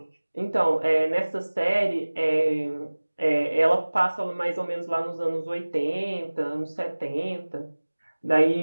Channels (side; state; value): both; inverted; correlation -1.00